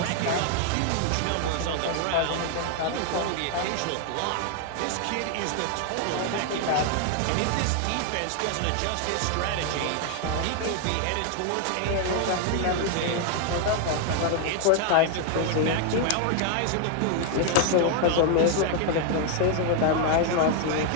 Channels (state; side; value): different; both; correlation 0.00